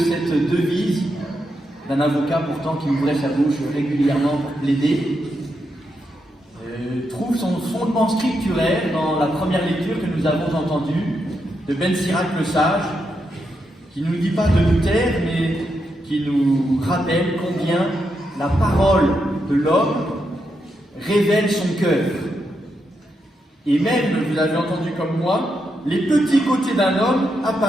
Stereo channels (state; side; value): normal; both; correlation 0.83